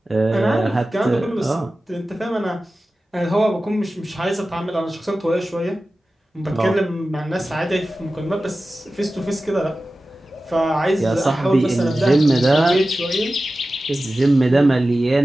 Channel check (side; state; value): both; normal; correlation 0.95